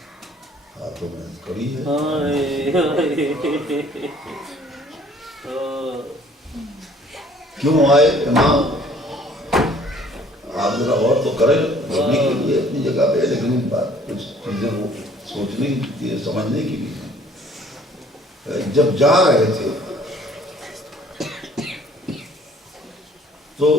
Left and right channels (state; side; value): normal; both; correlation 0.57